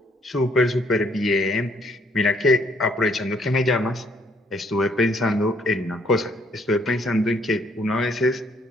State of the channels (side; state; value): both; normal; correlation 0.66